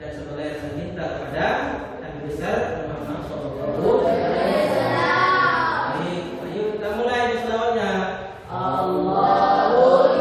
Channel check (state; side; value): identical; both; correlation 1.00